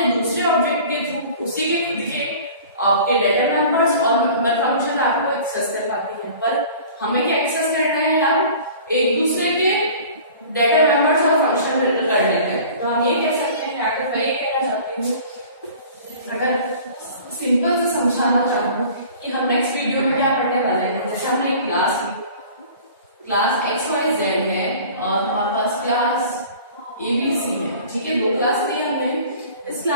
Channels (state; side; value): inverted; both; correlation -0.44